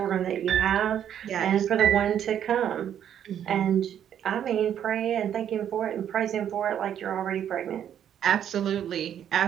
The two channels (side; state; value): left; quieter; 9.7 dB